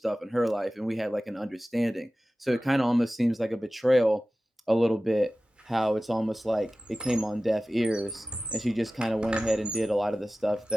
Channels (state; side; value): normal; both; correlation 0.96